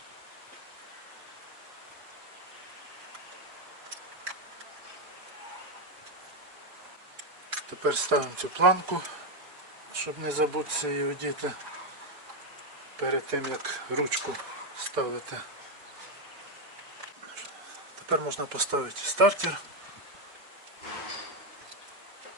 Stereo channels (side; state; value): left; late; 5.0 ms